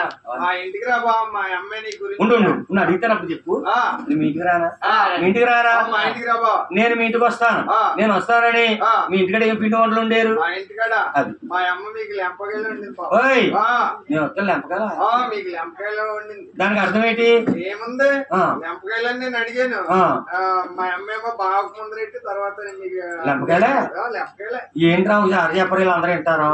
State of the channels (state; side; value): identical; both; correlation 1.00